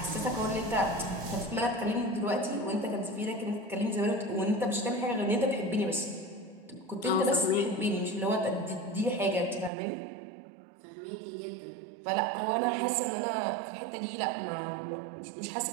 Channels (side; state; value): left; drops out; at 9.7 s